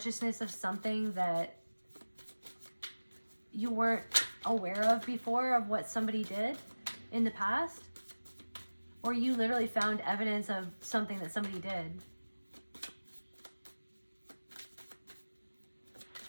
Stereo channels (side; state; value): both; inverted; correlation -1.00